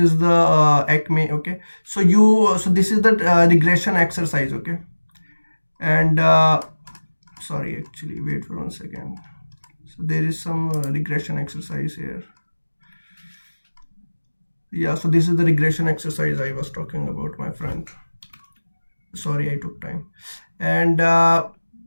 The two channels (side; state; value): both; inverted; correlation -1.00